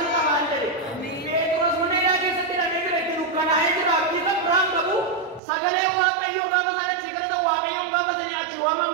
kamu anda deh. Terus mana lagi setiap minggu itu lukan aja lah kita perang kamu. Sagale wakai yang kamu sana cekar itu wakai yang kamu sana aci waman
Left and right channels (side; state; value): left; drops out; at 5.4 s